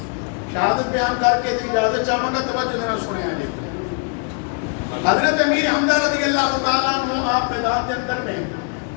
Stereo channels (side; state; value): right; quieter; 39.1 dB